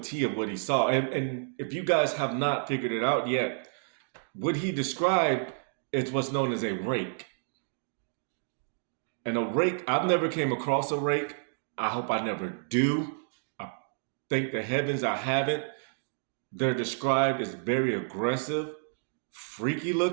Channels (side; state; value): left; silent; digital silence